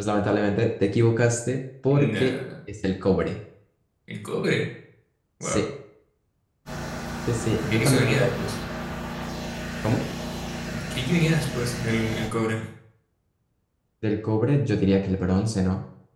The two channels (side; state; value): both; identical; correlation 1.00